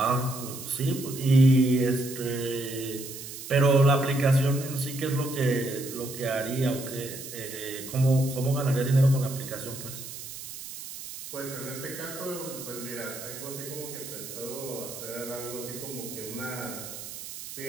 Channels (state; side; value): noise; right; hiss, 11 dB below the sound